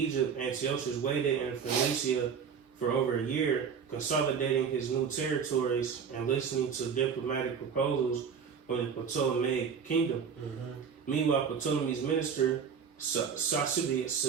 Antiochus waited in Phoenicia for over a year, consolidating his new territories and listening to diplomatic proposals from the Ptolemaic kingdom. Mm-hmm. Meanwhile, Ptolemy's minister,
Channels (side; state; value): left; quieter; 6.7 dB